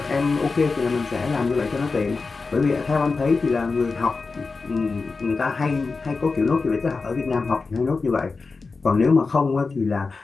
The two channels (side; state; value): right; quieter; 4.2 dB